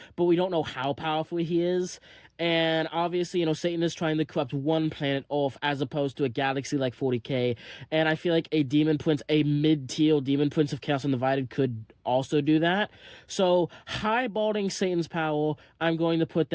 but we don't know how powerful he is. And obviously, Satan is trying to corrupt one planet off as opposed to a galaxy like 40K. And I feel like a Demon Prince, a mid-tier Demon Prince of Chaos Undivided could also do that. So, highballing Satan's power, I'm going to put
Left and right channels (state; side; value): identical; both; correlation 1.00